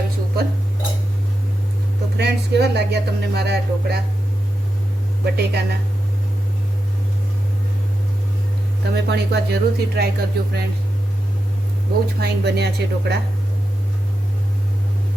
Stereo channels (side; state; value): both; normal; correlation 0.88